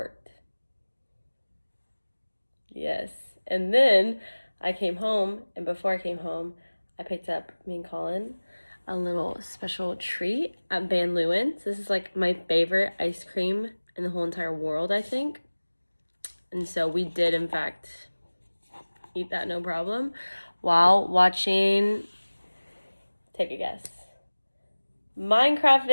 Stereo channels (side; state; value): both; inverted; correlation -1.00